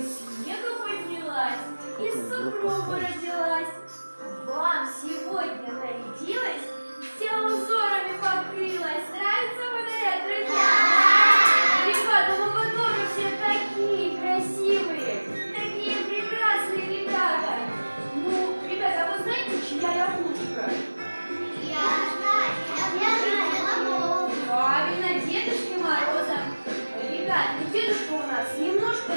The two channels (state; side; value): inverted; both; correlation -1.00